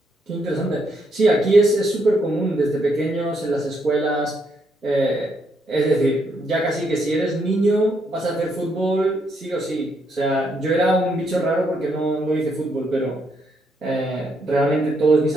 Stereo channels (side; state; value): both; normal; correlation 0.76